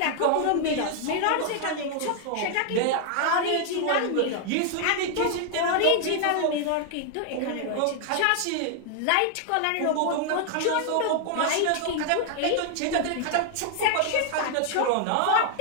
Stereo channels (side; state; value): both; different; correlation 0.00